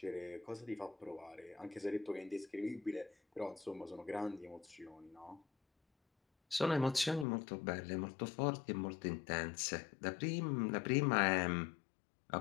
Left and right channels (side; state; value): right; drops out; at 7.2 s